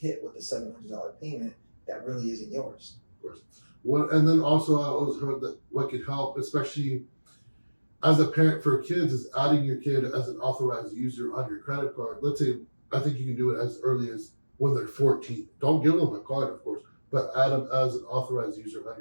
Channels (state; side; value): inverted; both; correlation -1.00